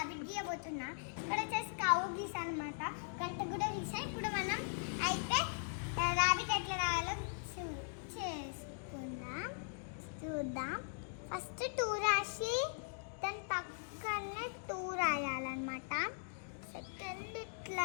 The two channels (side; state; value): right; silent; digital silence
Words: గీయబోతున్నా. ఇక్కడ వచ్చేసి కావు గీసా అనమాట, గంట కూడా గీసా. ఇప్పుడు మనం అయితే రాబిట్ ఎట్లా రాయాలో చూద్దాం. ఫస్ట్ 2 రాసి దాని పక్కనే 2 రాయాలన్నమాట. సెకండ్